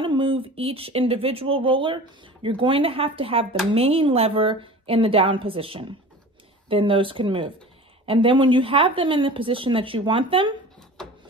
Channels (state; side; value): normal; both; correlation 0.38